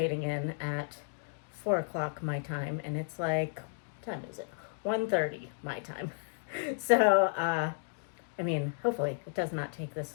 in at 4 o'clock my time, and it's like, what time is it? 1:30 my time. So, I mean, hopefully it does not take this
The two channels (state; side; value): silent; right; digital silence